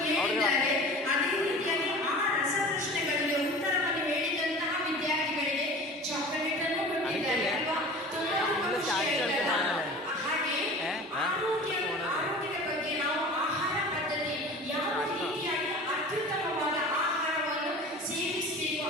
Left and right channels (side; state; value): both; normal; correlation 0.39